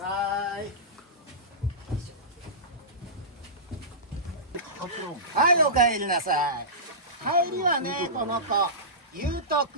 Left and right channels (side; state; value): both; normal; correlation -0.20